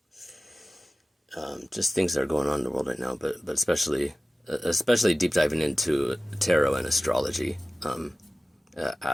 just things that are going on in the world right now, but especially deep diving into tarot and astrology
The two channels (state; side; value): normal; both; correlation 0.96